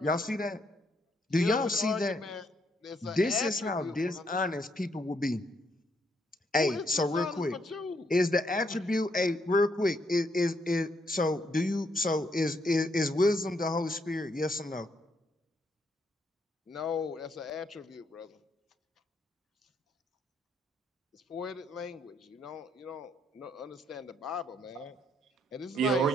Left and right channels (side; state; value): both; normal; correlation 0.74